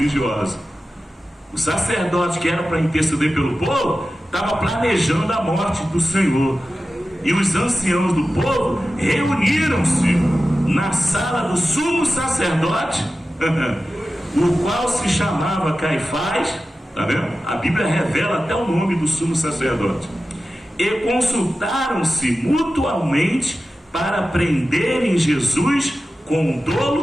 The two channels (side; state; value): both; normal; correlation 0.93